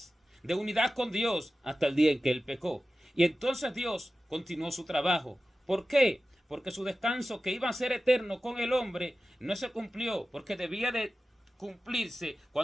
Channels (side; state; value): both; normal; correlation 0.94